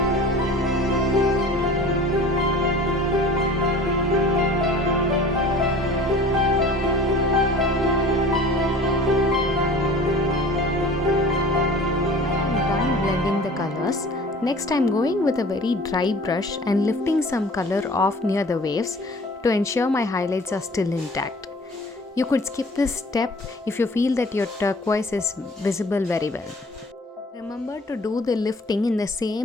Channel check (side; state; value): both; normal; correlation 0.44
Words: Colors. Next, I'm going with a very dry brush and lifting some color off near the waves to ensure my highlights are still intact. You could skip this step if you feel that your turquoise is visible very well. Remember to do the lifting in the